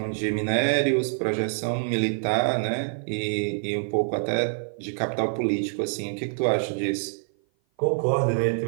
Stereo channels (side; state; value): left; silent; 56 dB below the other